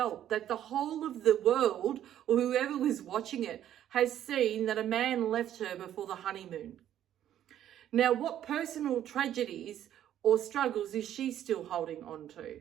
that the whole of the world, or whoever was watching it, has seen that a man left her before the honeymoon. Now, what personal tragedies or struggles is she still holding on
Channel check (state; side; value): quieter; left; 11.2 dB